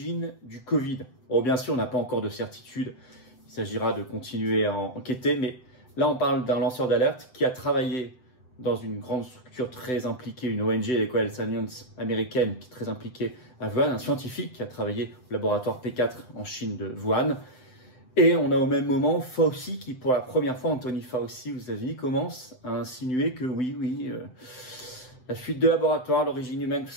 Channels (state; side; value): late; right; 7.9 ms